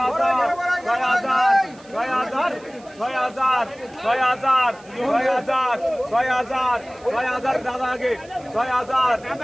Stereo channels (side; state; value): right; noise; hiss, 26 dB below the sound